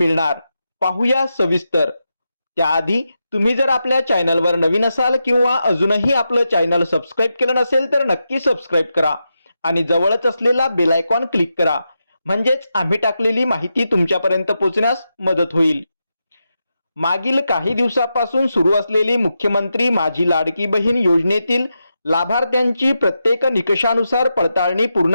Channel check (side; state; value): both; inverted; correlation -0.87